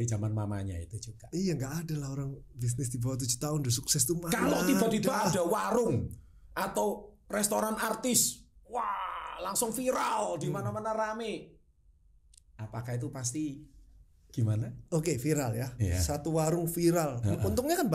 zaman mamanya itu juga. Iya, enggak ada lah orang bisnis di bawah 7 tahun udah sukses tuh. Kalau tiba-tiba ada warung atau restoran artis, wah, langsung viral di mana-mana rame. Apakah itu pasti gimana? Oke, viral ya. Yeah. Satu warung viral. Untungnya kan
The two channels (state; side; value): identical; both; correlation 1.00